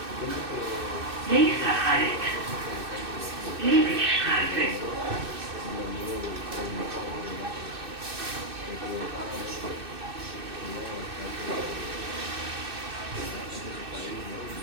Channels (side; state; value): left; late; 2.6 ms